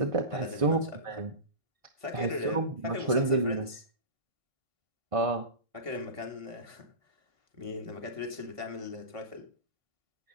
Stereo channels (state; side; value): late; left; 1.5 ms